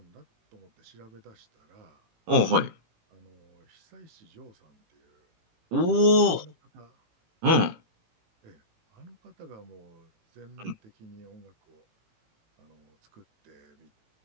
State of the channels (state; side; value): late; left; 18 ms